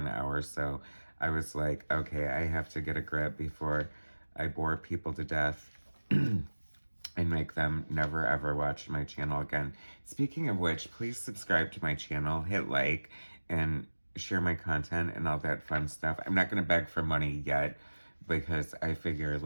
hour, so I was like, okay, I have to get a grip before I bore people to death and make them never ever watch my channel again. Speaking of which, please subscribe to my channel, hit like, and share my content and all that fun stuff. I'm not going to beg for money yet because I figure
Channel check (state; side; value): inverted; both; correlation -1.00